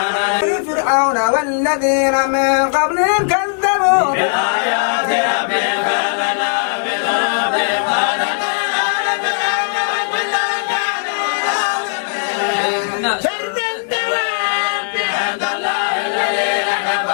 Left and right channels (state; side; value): silent; right; 65 dB below the other